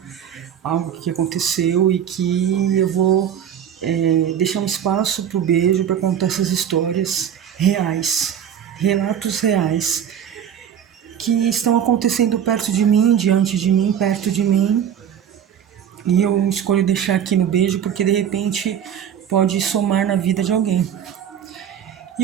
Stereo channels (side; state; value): left; quieter; 9.0 dB